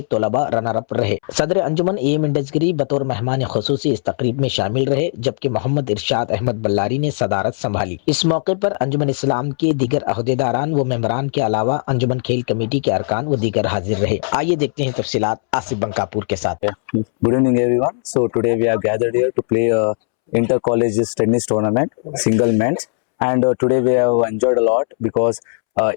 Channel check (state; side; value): silent; right; 67 dB below the other